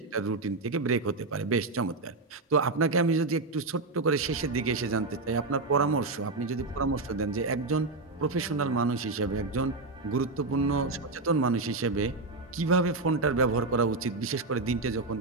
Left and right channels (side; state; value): left; quieter; 3.5 dB